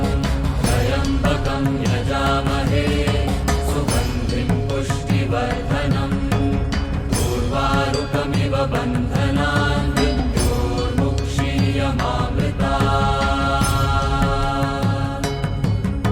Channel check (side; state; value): both; identical; correlation 1.00